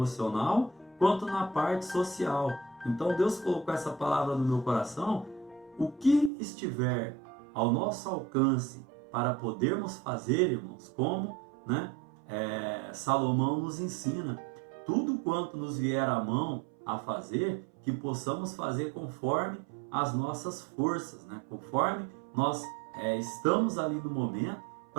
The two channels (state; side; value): drops out; left; at 6.3 s